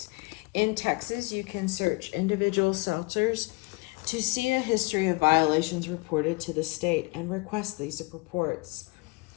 In Texas, you can search individual shelters to see a history of violations reported to the state and request these reports.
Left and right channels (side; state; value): right; quieter; 27.1 dB